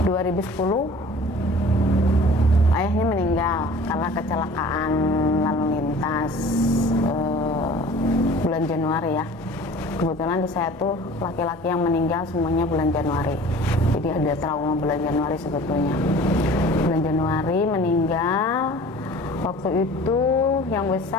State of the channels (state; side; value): normal; both; correlation 0.45